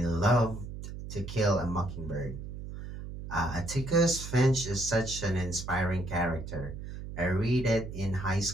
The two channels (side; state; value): right; noise; hum, 9 dB below the sound